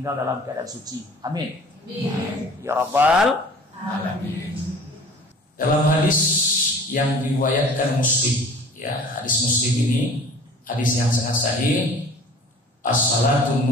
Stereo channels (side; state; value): both; normal; correlation 0.46